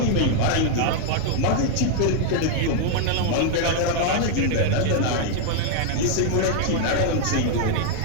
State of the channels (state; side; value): different; both; correlation 0.00